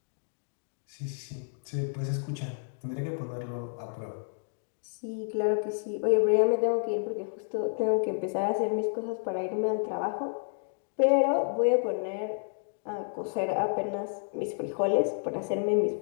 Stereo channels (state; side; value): silent; right; digital silence